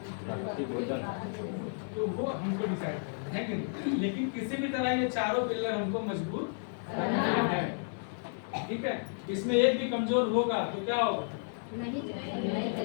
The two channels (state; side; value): silent; right; digital silence